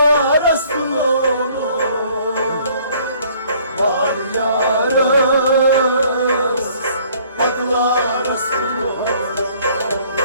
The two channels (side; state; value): both; inverted; correlation -0.58